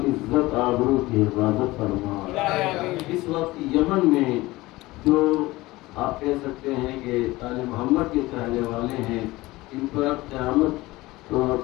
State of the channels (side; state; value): right; quieter; 19.6 dB